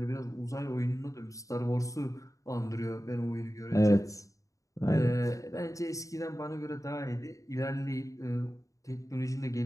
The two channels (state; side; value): late; right; 0.16 ms